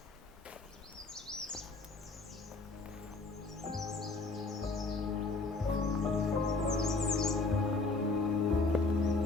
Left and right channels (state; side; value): quieter; right; 3.6 dB